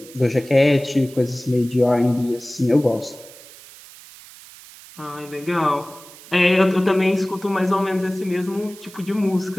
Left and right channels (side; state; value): right; noise; hiss, 20 dB below the sound